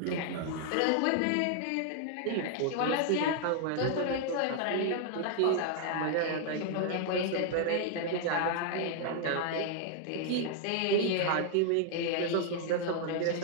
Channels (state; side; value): different; both; correlation 0.00